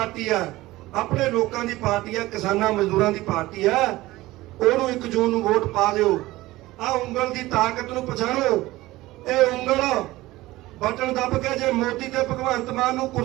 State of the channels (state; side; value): quieter; left; 18.2 dB